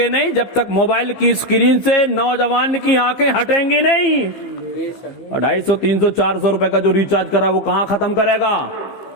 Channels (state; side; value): late; right; 15 ms